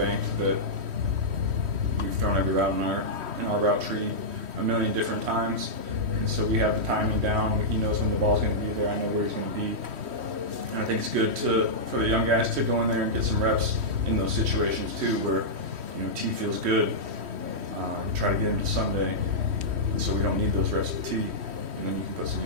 that we've thrown every route in our route tree. a million different times. And so we have the timing down. He knows when the ball's going to be there. I know where he's going to be. And I think it's good for the young guys to go in there and get some reps in those situations too, where T feels good. Try to get him to Sunday, and so we don't need those reps with T. And then you can put some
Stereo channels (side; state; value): left; late; 3.1 ms